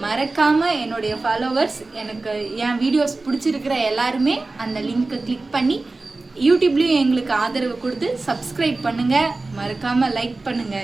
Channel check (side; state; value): left; quieter; 3.3 dB